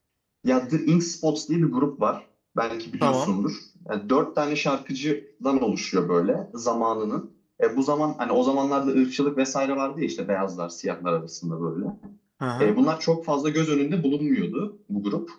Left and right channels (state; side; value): identical; both; correlation 1.00